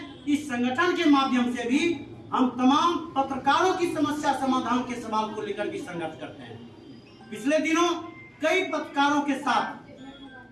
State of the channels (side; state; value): both; identical; correlation 1.00